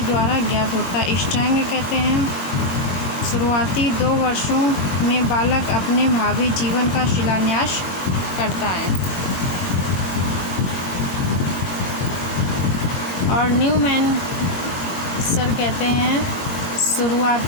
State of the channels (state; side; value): late; right; 22 ms